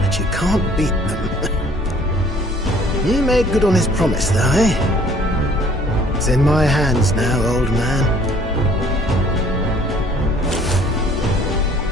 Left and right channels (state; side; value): normal; both; correlation 0.56